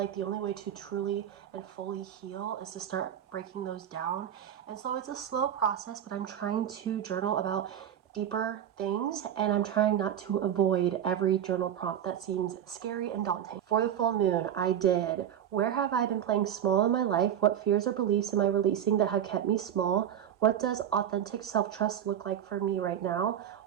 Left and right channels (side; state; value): left; quieter; 9.9 dB